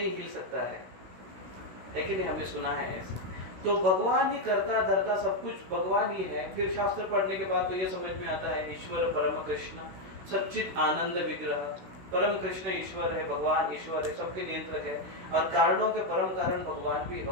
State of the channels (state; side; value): late; left; 16 ms